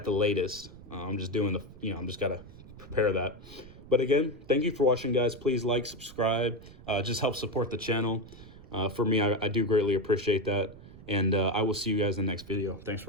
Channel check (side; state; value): right; noise; rumble, 18 dB below the sound